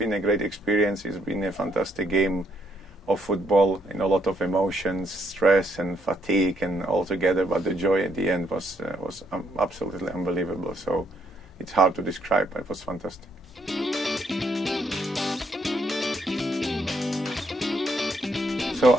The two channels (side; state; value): both; normal; correlation 0.72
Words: a great experience. It's been a fantastic game of football, a lot of emotions, stress and fatigue and all together, but the joy at the end was absolutely unbelievable. So it's hard to describe, but it was fantastic. So